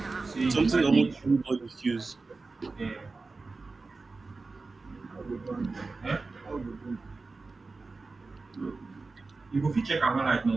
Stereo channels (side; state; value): left; quieter; 3.8 dB